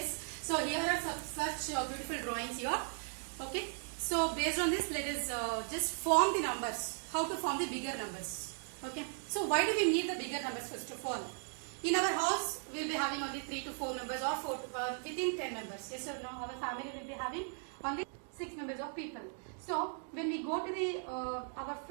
so here are such beautiful drawings here. Okay, so based on this, let us just form the numbers. How to form the bigger numbers? Okay, so why do we need the bigger numbers first of all? In our house, we will be having only 3 to 4 members or within 10 members. Yes or no? Our family will be having only 6 members of people. So when we go to the our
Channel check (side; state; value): left; silent; 53 dB below the other